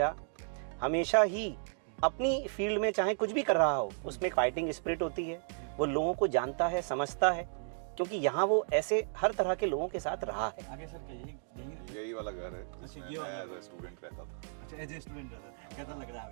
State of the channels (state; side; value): silent; left; digital silence